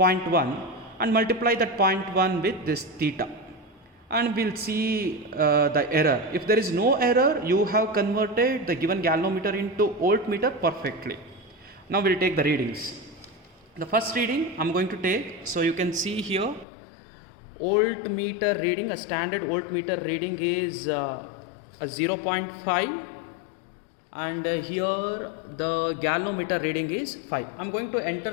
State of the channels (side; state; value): right; drops out; at 16.7 s